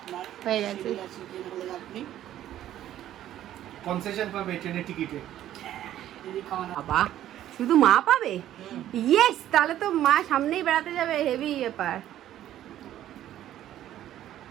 হয়ে গেছে। আপনি কনসেশন পাবে ট্রেনের টিকিটে। যদি খাওয়ানো বাবা, শুধু মা পাবে? ইয়েস, তাহলে তো মা সামনেই বেড়াতে যাবে, হেভি ব্যাপার।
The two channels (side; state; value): left; quieter; 12.4 dB